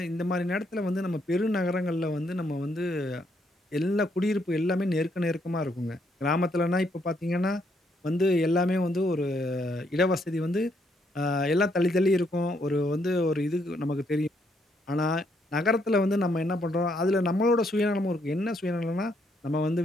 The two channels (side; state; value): both; normal; correlation 0.73